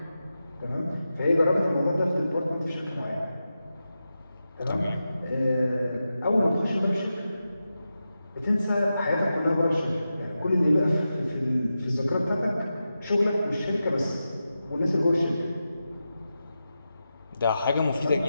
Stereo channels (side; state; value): both; inverted; correlation -0.91